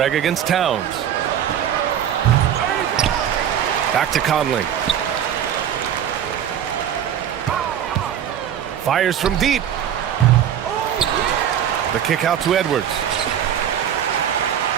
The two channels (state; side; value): quieter; left; 9.7 dB